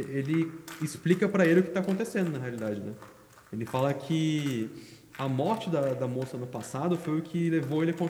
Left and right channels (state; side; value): identical; both; correlation 1.00